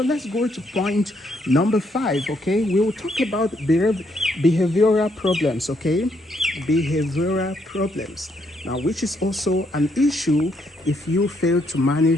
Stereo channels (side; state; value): both; normal; correlation 0.73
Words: Let's go to point number 5, okay? We will talk about behavioral problems, okay? Behavioral problems. Now, which is also an issue if you fail to